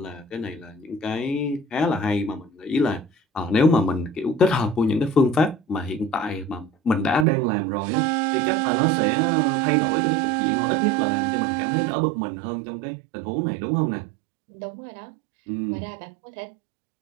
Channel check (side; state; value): left; drops out; at 7.2 s